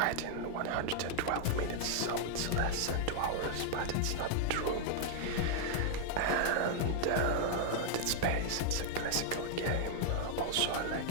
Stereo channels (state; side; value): different; both; correlation -0.01